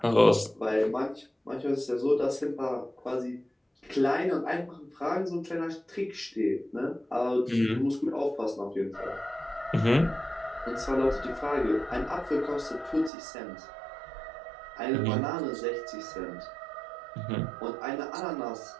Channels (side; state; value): left; drops out; at 13.1 s